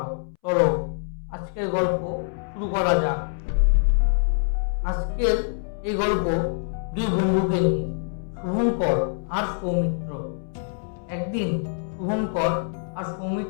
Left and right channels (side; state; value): right; silent; 62 dB below the other